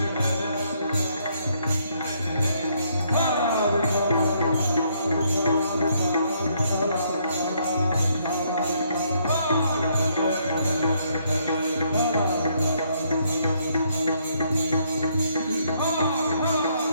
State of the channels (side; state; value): both; inverted; correlation -0.70